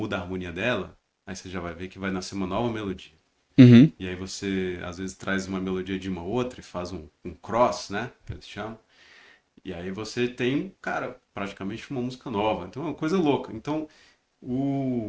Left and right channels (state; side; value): identical; both; correlation 1.00